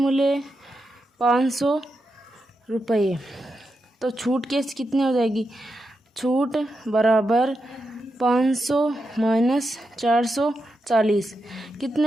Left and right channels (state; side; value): normal; both; correlation 0.87